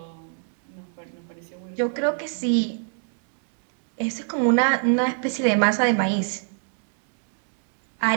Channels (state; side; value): silent; left; digital silence